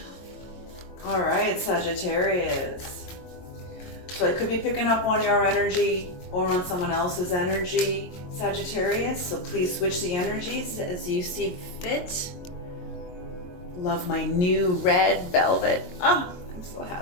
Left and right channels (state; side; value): late; right; 22 ms